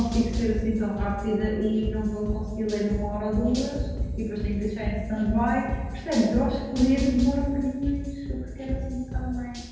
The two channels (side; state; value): both; identical; correlation 1.00